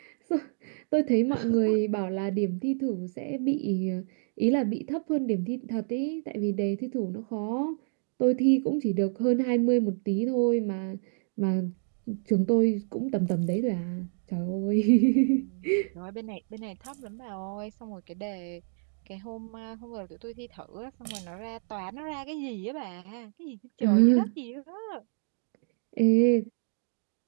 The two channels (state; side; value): silent; left; 59 dB below the other